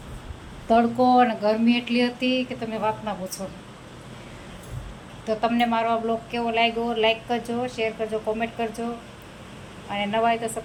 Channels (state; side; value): identical; both; correlation 1.00